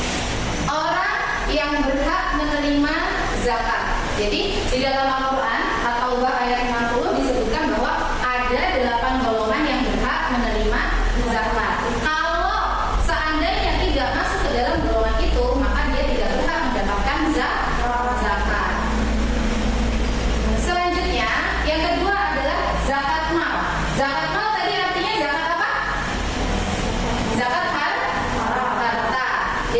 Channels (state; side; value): identical; both; correlation 1.00